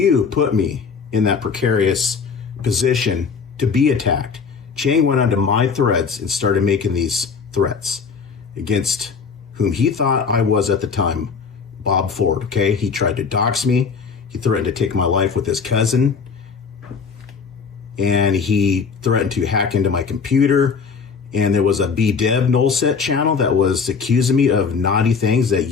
put me in that precarious position to be attacked. Chang went onto my threads and started making these threats against whom he thought I was at the time, Bob Ford, okay? He tried to dox me. He threatened to take my life with his cousin. And he threatened to hack into my computer. And there was a bdevnulset channel that was accusing me of naughty things that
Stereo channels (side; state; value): right; quieter; 5.5 dB